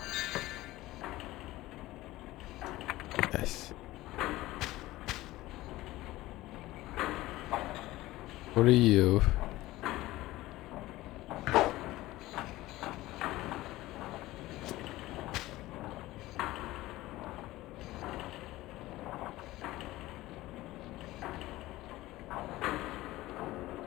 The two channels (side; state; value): right; quieter; 17.5 dB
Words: Yes. What are you?